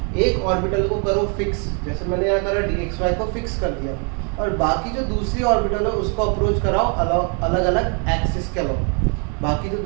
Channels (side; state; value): left; quieter; 37.8 dB